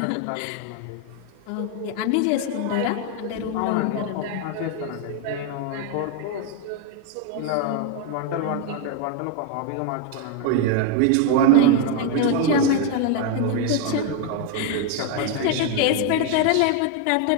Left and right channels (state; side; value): different; both; correlation 0.01